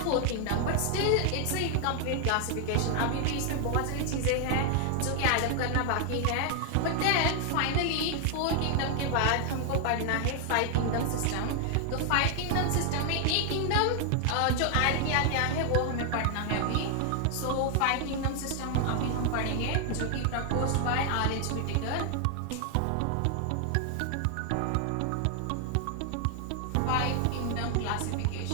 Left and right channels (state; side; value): different; both; correlation 0.00